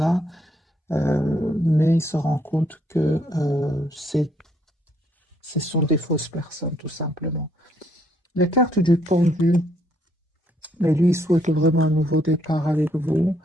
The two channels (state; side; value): normal; both; correlation 0.70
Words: mais il se rend compte que ce sont des fausses personnes, tout simplement. La carte du pendu, mais lui, il souhaite vraiment un nouveau départ avec vous.